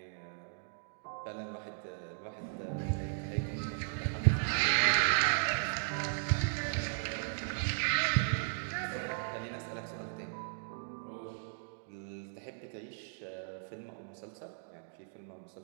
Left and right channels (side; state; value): left; silent; digital silence